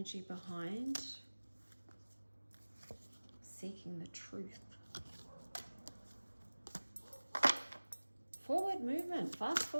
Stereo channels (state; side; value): inverted; both; correlation -1.00